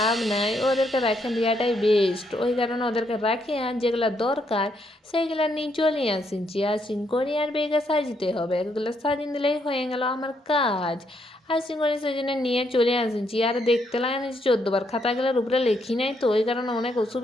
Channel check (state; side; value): normal; both; correlation 0.75